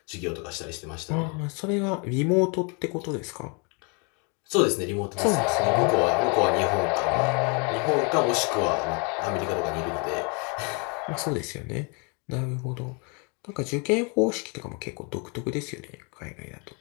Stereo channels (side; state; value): right; quieter; 33.7 dB